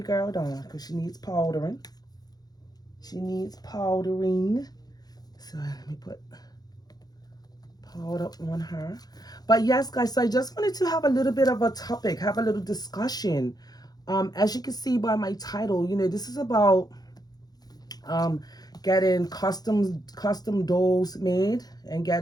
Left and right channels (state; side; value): late; right; 0.19 ms